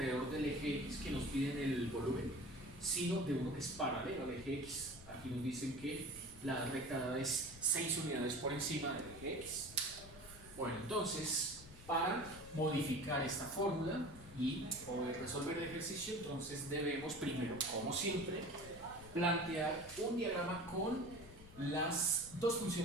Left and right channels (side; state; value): left; noise; rumble, 18 dB below the sound